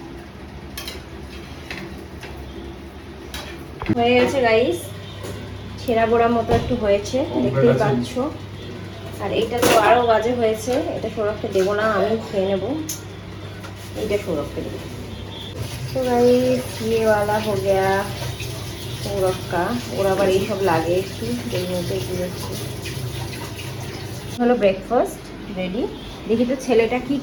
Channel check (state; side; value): identical; both; correlation 1.00